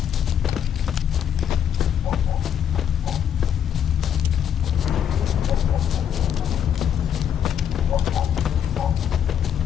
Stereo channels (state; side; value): quieter; right; 9.0 dB